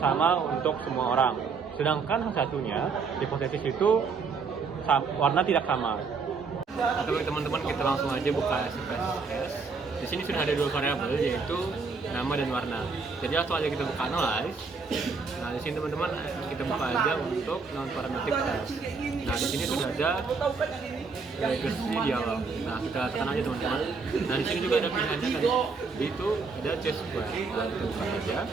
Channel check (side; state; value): left; quieter; 4.8 dB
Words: untuk semua orang. Sedangkan satunya, hipotesis itu warna tidak sama. Oke teman-teman, kita langsung aja buka SPSS. Di sini sudah ada 2 variabel, yaitu nama dan warna. Jadi langsung aja kita buka analyze. Nah, di sini teman-teman kita buka aja untuk non parametric test. Nah, di sini sudah ada regresi dialog. Nah, kita tekan aja teman-teman. Nah, di sini juga ada pilihannya tadi. Itu ada T-square. Nah, kita buka aja.